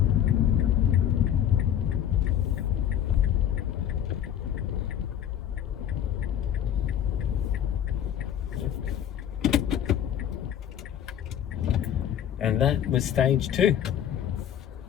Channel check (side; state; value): right; quieter; 10.1 dB